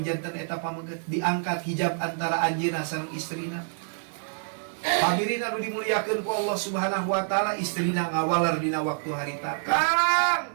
janten eta pameget, diangkat hijab antara anjeunna sareng istrina. Hadirin anu dimuliakeun ku Allah Subhanahu wa taala, istrina ngawalar dina waktu harita.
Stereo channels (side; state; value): left; silent; digital silence